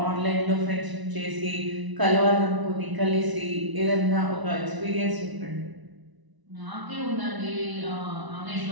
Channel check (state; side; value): late; left; 1.0 ms